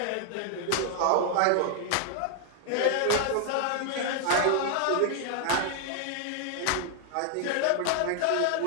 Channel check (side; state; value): both; different; correlation 0.00